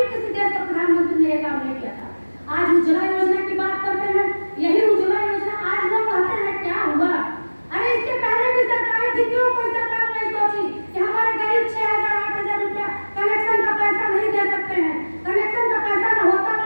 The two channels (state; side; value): inverted; both; correlation -1.00